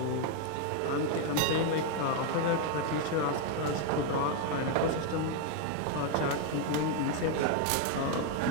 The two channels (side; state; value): both; different; correlation 0.01